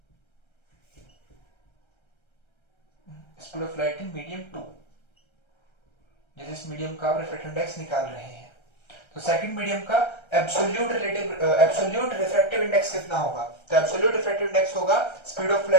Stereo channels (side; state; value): right; late; 1.3 ms